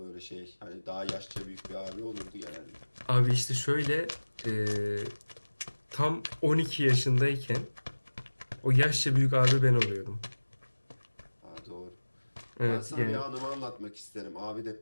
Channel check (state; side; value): inverted; both; correlation -1.00